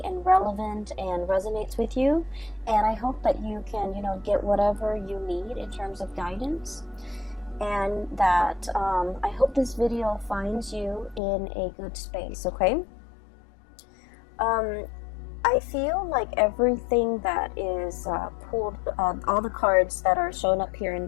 and relevant and resonates with you. And I hope that you can, get whatever you need in terms of guidance. And that I hope this video finds you in a good space, okay? I feel like everything that is pulled, all the cards that are shown up here in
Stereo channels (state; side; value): drops out; right; at 11.2 s